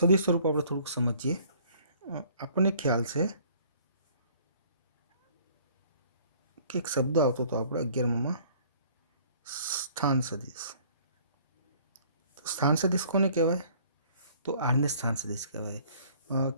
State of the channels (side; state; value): both; inverted; correlation -0.56